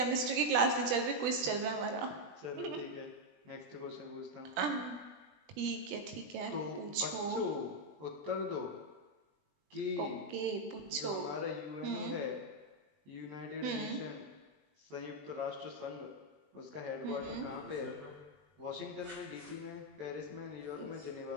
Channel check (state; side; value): late; left; 20 ms